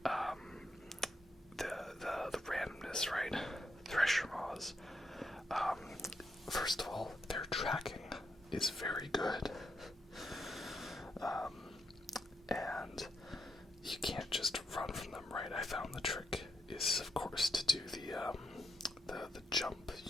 the randomness, right? Thresher Maws. First of all, their tracking is very good. And you can't just run from them, right? I found the trick is, of course, to do the jump.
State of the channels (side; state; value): both; normal; correlation 0.82